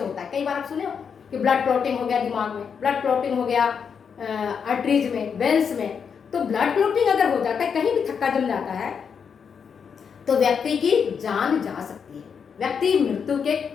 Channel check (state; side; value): quieter; right; 6.6 dB